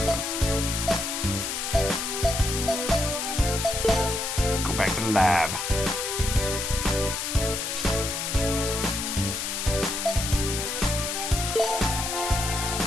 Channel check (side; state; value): left; noise; hiss, 3 dB below the sound